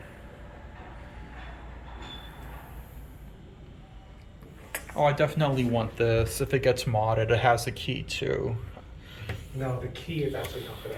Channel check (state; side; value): identical; both; correlation 1.00